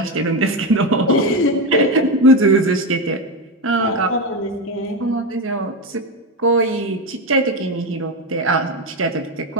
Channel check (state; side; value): normal; both; correlation 0.12